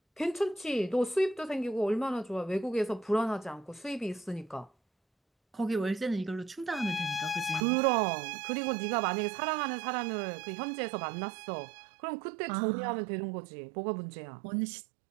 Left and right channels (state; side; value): drops out; left; at 7.7 s